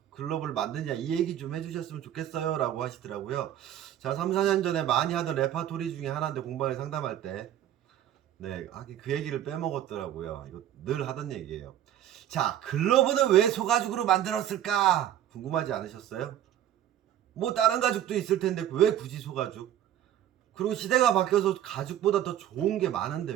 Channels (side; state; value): left; quieter; 11.3 dB